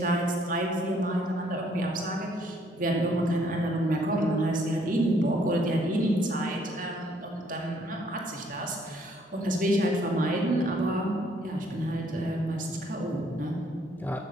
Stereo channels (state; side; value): normal; both; correlation 0.65